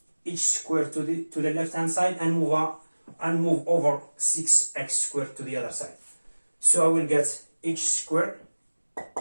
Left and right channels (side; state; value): both; inverted; correlation -1.00